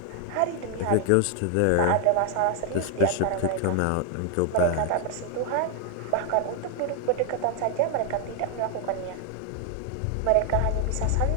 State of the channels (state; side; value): different; both; correlation 0.00